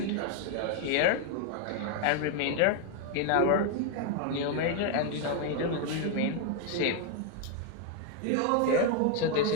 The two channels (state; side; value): different; both; correlation 0.00